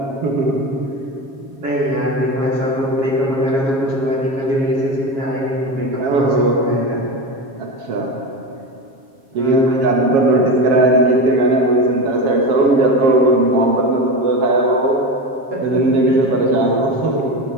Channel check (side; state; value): left; late; 7.3 ms